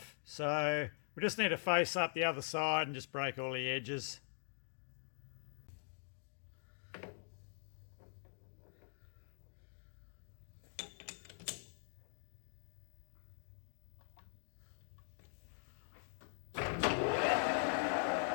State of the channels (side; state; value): right; silent; digital silence